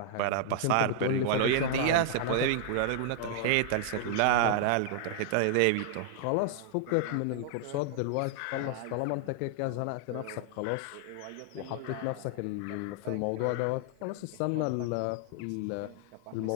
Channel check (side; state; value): both; different; correlation 0.00